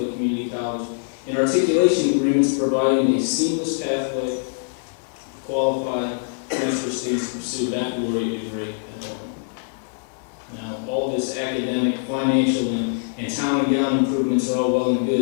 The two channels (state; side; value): silent; right; digital silence